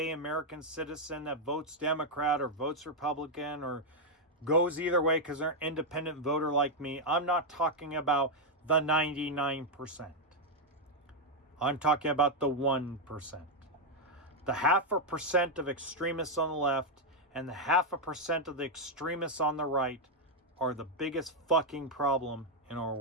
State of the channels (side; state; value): both; normal; correlation 0.00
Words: American citizen that votes Democrat or votes Republican or goes either way because they're an independent voter like me. I'm not talking about the 99%. I'm talking about the 1%. The 0.5% of extremists on the left and the 0.5% of the extremists on the right are the biggest fucking problem in our